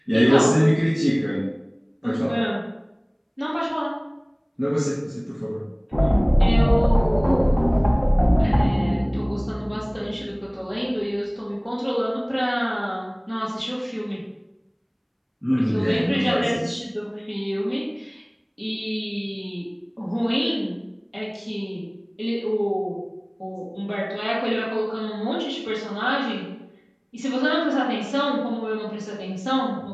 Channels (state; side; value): identical; both; correlation 1.00